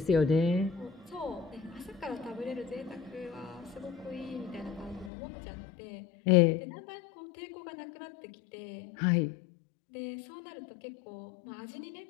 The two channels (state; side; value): drops out; right; at 5.1 s